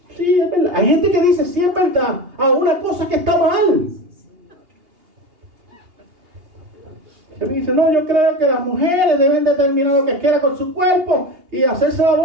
Sí, es verdad. Hay gente que dice, sí es verdad, a una cosa que está mal. Y me dice, no, yo creo que las mujeres deben determinar lo que quieran con su cuerpo y hacerse el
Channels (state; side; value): late; left; 2.8 ms